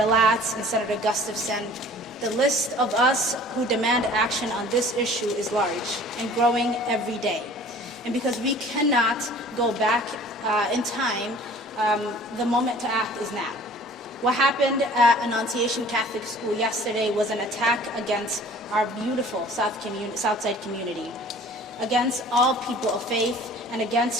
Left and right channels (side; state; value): both; normal; correlation 0.48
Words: Latz, and Senator Gustafson. The list of us who demand action on this issue is large and growing every day. And because we cannot go back in time, the moment to act is now. What happened at Annunciation Catholic School yesterday was an attack against our beautiful Southside community, against all people of faith, and